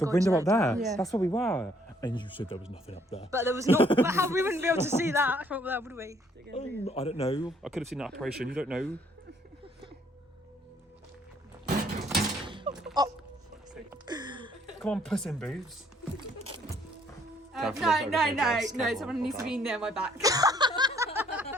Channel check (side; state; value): both; normal; correlation 0.65